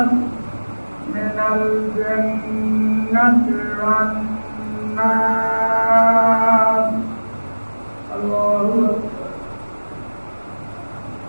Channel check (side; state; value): both; inverted; correlation -1.00